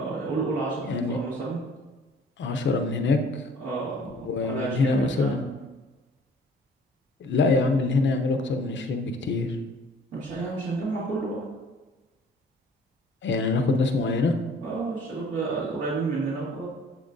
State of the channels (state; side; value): normal; both; correlation 0.54